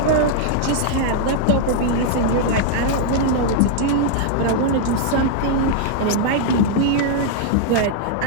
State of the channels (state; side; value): different; both; correlation -0.01